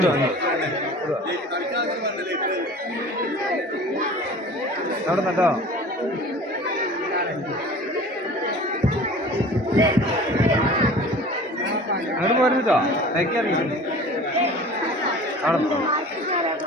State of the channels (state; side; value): normal; both; correlation 0.42